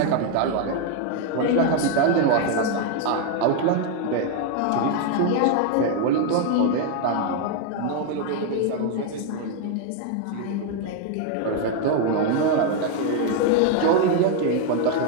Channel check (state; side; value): different; both; correlation 0.00